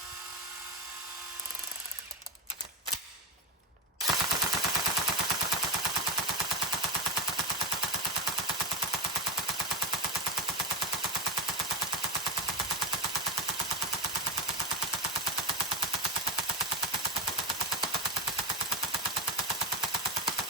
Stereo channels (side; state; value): both; normal; correlation 0.14